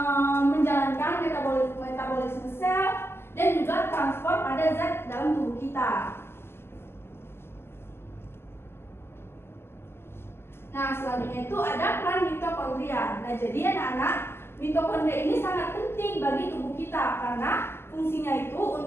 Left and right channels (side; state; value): right; late; 0.12 ms